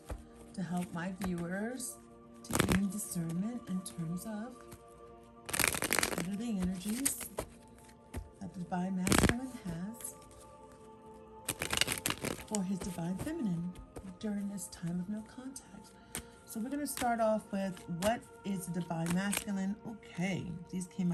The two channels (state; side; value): identical; both; correlation 1.00